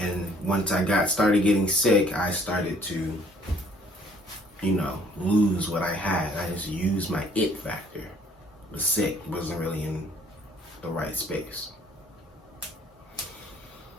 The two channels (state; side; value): normal; both; correlation 0.60